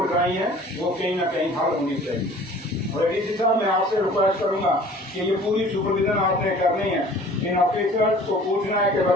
कराई हैं वो कहीं ना कहीं हल होनी चाहिए। और डीसी साहब मैं आपसे रिक्वेस्ट करूंगा कि ये पूरी सुपरविजन आपने करनी है। इन ऑफिसर्स को पूछना है कि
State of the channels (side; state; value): both; normal; correlation 0.48